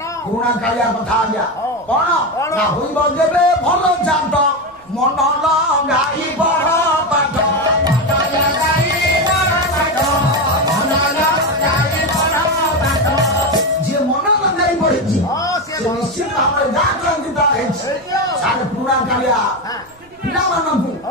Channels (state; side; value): noise; right; rumble, 29 dB below the sound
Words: पुराणा कालिया कथा आज्ञा कौन ना होइब जेबे भल जात मन लगाई पढ़ पाठ जे मन लगाई पढ़ी निश्चित भाव सारे पुराणा कालिया पिला